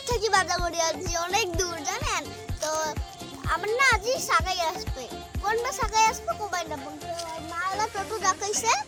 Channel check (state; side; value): identical; both; correlation 1.00